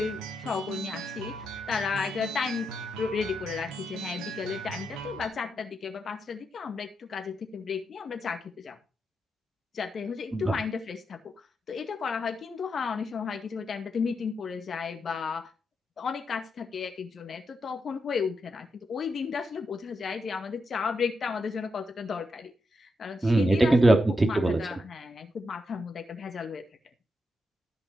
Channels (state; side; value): normal; both; correlation 0.84